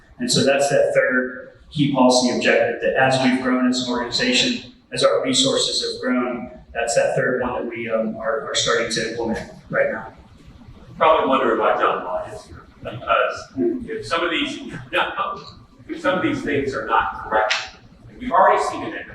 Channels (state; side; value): identical; both; correlation 1.00